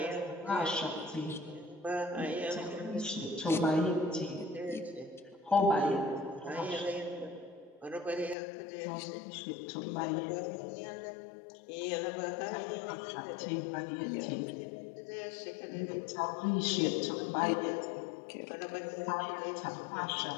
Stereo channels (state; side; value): drops out; right; at 8.3 s